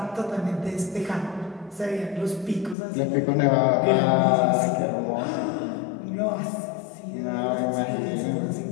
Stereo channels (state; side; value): drops out; right; at 2.8 s